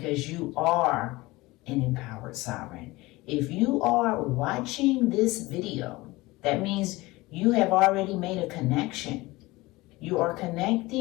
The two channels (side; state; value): right; quieter; 20.7 dB